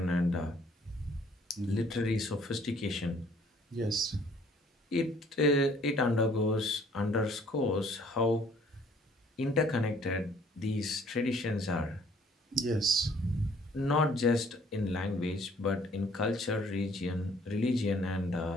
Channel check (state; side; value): normal; both; correlation 0.59